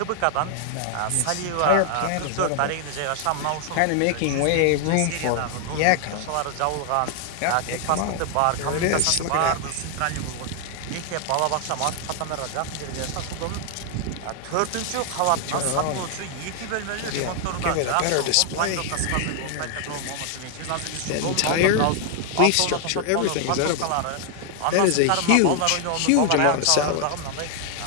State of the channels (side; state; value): both; different; correlation 0.00